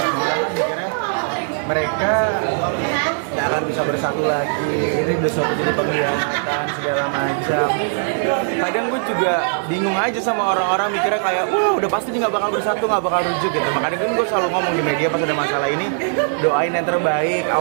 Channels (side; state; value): left; silent; digital silence